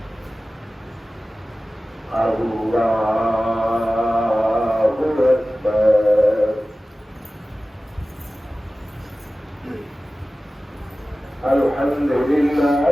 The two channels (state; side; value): normal; both; correlation 0.96